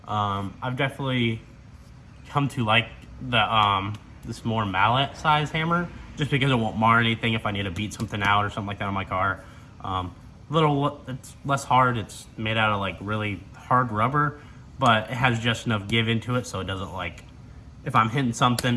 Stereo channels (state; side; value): identical; both; correlation 1.00